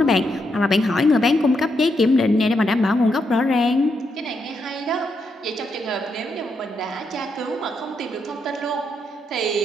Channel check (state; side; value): normal; both; correlation 0.80